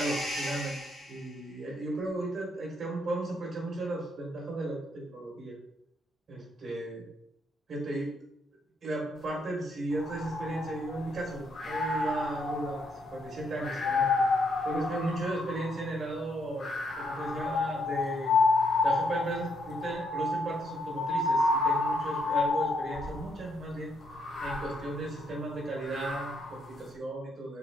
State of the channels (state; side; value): normal; both; correlation 0.74